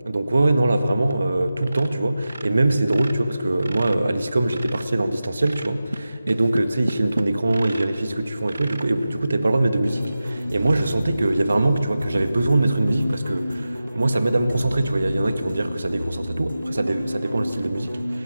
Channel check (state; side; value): inverted; both; correlation -0.94